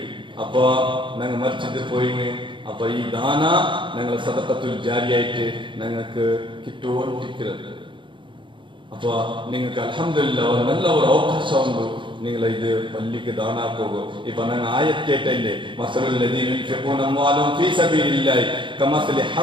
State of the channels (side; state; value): left; late; 0.24 ms